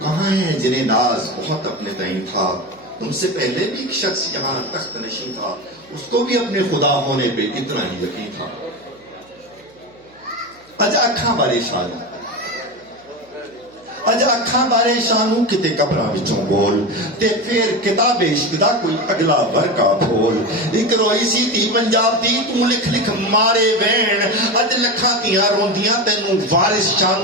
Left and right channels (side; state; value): right; noise; hum, 30 dB below the sound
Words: کہاں ہیں جنہیں ناز بہت اپنے تئیں تھا. تم سے پہلے بھی ایک شخص یہاں تخت نشین تھا, اس کو بھی اپنے خدا ہونے پہ اتنا ہی یقین تھا. اج اکھاں بارے شان اج اکھاں بارے شانوں کتے قبراں وچوں بول تے پھر کتاب عشق دا کوئی اگلا ورقہ کھول. ایک روئی سی تھی پنجاب دی تو لکھ لکھ مارے وین, اج لکھاں تیاں روندیاں تینوں وارث